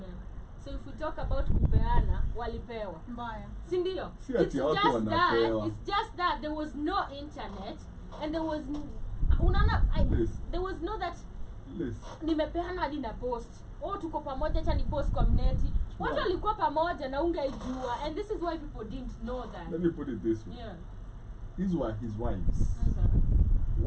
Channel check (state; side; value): identical; both; correlation 1.00